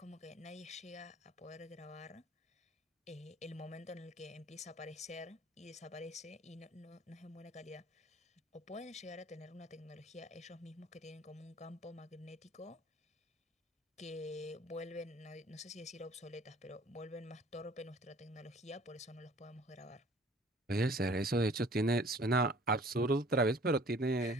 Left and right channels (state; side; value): normal; both; correlation 0.51